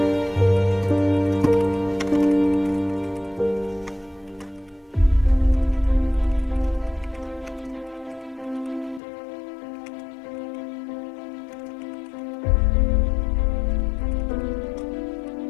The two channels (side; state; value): right; drops out; at 9.0 s